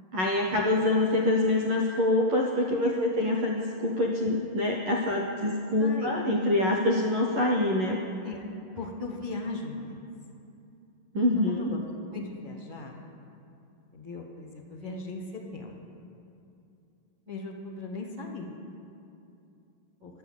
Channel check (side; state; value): left; late; 11 ms